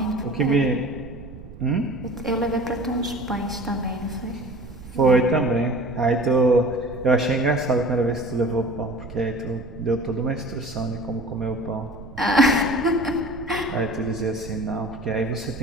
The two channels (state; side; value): noise; right; rumble, 15 dB below the sound